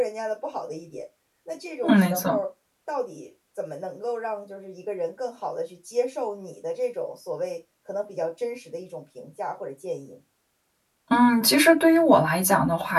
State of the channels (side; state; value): both; identical; correlation 1.00